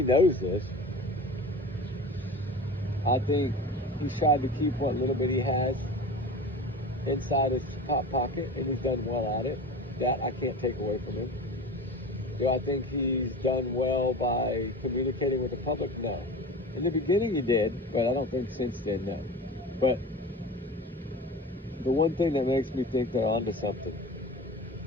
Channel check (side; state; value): both; normal; correlation 0.33